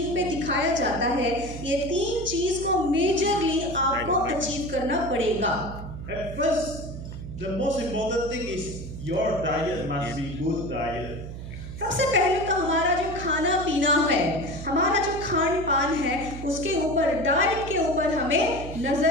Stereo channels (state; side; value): noise; right; hum, 10 dB below the sound